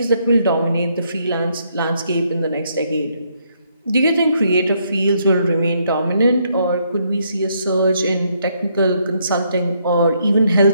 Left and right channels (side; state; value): both; inverted; correlation -0.73